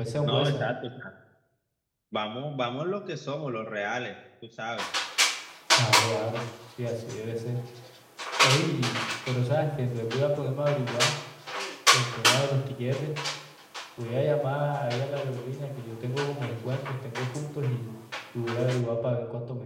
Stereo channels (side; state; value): both; identical; correlation 1.00